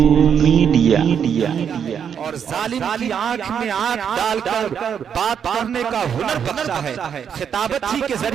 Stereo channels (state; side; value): quieter; left; 7.8 dB